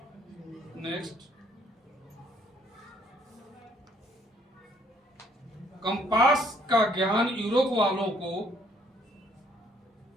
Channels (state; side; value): normal; both; correlation 0.64